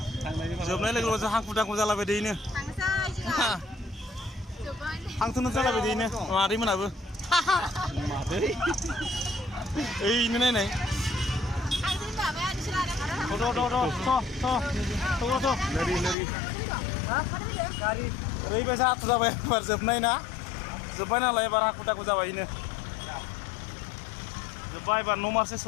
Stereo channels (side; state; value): right; drops out; at 16.2 s